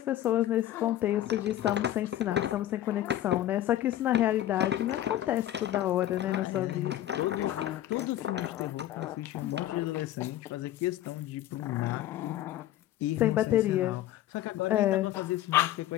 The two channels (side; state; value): right; quieter; 13.2 dB